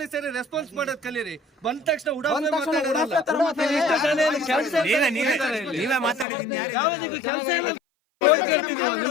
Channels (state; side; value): drops out; right; at 6.2 s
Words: ರೆಸ್ಪಾನ್ಸ್ ಮಾಡೋದು ಕಲೀರಿ. ಬಂದ ತಕ್ಷಣ ನೀವೇ ಮಾತಾಡಿದ್ದೀನಿ ಕೆಲಸ ಇಲ್ಲ.